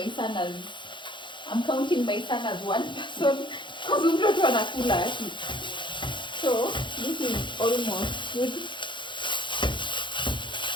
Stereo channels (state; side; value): late; right; 0.23 ms